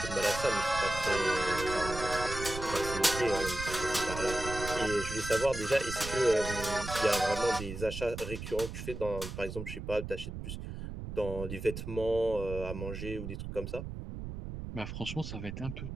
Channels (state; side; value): noise; right; rumble, 8 dB below the sound